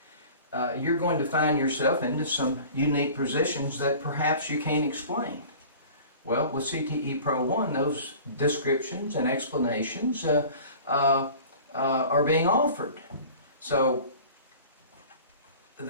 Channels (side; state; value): both; inverted; correlation -0.43